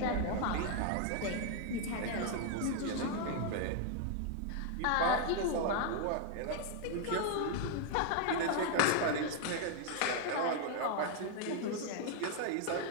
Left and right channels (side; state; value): both; different; correlation 0.00